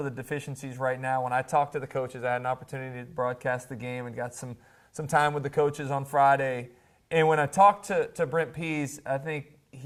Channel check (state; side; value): identical; both; correlation 1.00